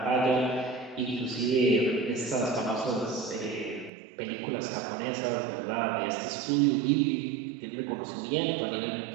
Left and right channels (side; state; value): left; drops out; at 3.9 s